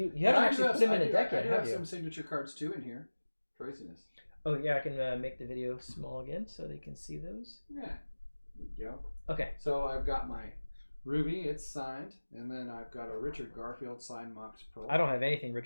haven't actually put them in a deck yet, I do have have you? some signature cards too in here. Craziness. Oh yeah, I can make the video small again so they can see those. Yeah. There you go. Okay. So I've got my Ruby, it's signed, and then I've got a Richard Garfield signed Mox Pearl. I don't have anything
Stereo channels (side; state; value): both; inverted; correlation -1.00